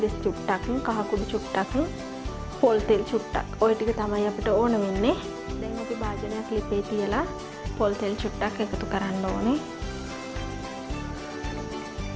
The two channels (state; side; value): identical; both; correlation 1.00